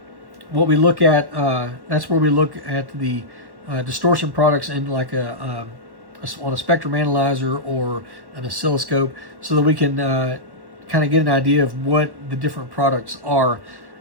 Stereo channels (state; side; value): late; left; 1.1 ms